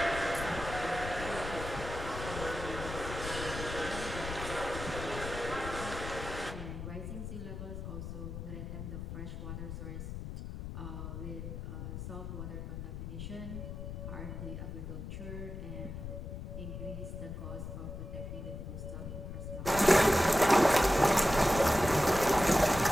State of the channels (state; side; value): noise; left; rumble, 7 dB below the sound